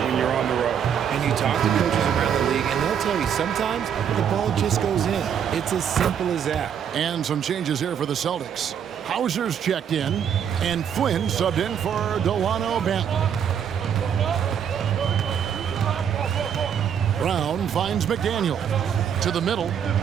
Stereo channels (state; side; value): quieter; left; 8.3 dB